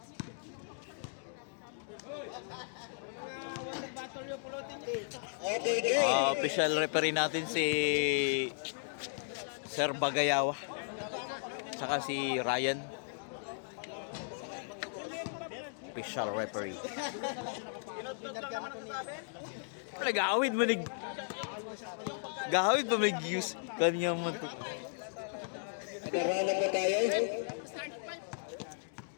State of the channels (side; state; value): right; silent; digital silence